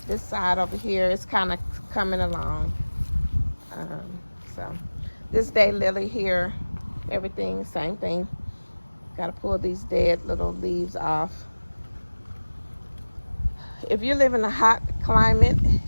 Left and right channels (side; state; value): both; inverted; correlation -1.00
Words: this side over here is kind of coming along. So this daylily here, everything, same thing. Got to pull these dead little leaves off. If you live in a hot climate,